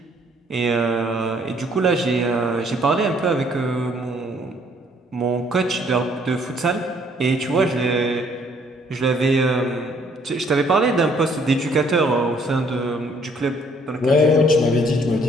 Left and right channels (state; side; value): normal; both; correlation 0.63